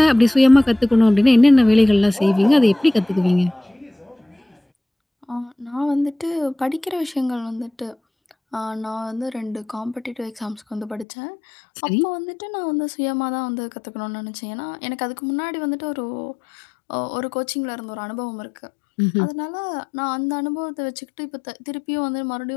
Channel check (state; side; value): drops out; right; at 11.1 s